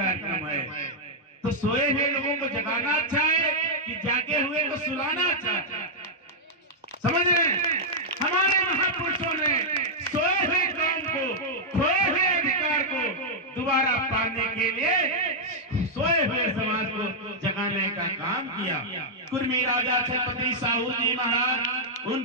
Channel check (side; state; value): both; normal; correlation -0.06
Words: है। तो सोए हुए लोगों को जगाना अच्छा है कि जागे हुए को सुलाना अच्छा है? समझ रहे हैं? हमारे महापुरुषों ने सोए हुए कौम को, खोए हुए अधिकार को दोबारा पाने के लिए सोए हुए समाज को जगाने का काम किया। कुर्मी राजा छत्रपति साहू जी महाराज,